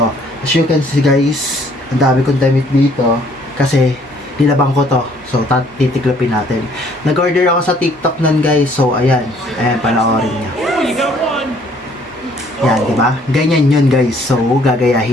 As you can see guys, ang dami kong damit dito kasi nilabang ko to. So, titiklopin natin. Nag-order ako sa TikTok nun guys. So, ayan. Ayan, panoorin niya. Yan, di ba? Ganyan yun guys. So,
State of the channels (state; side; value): normal; both; correlation 0.61